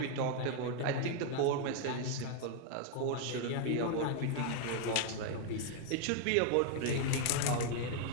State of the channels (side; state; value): both; different; correlation 0.00